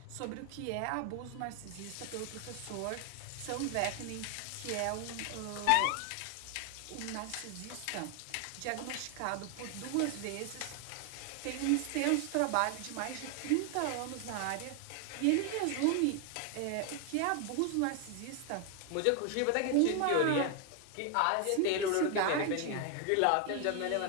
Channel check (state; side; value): different; both; correlation 0.00